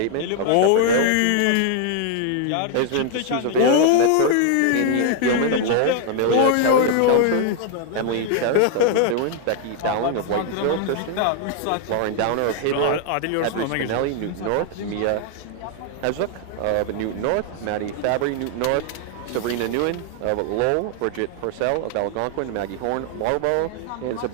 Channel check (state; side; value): different; both; correlation 0.00